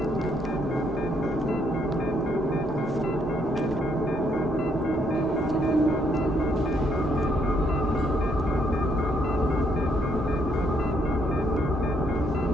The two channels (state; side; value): normal; both; correlation 0.72